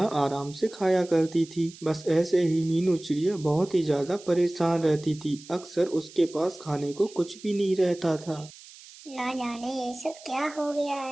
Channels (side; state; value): right; noise; hiss, 20 dB below the sound